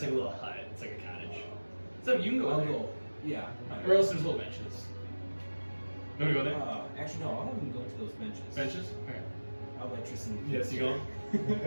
like a little hut. It's like a cottage. So you can go I'll in there. go. Yeah. Or else there's little benches. You want to go there? Actually, no. I'll have him go to those benches. Benches? Okay. I'll let Tristan. Yes, you go.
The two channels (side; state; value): both; inverted; correlation -1.00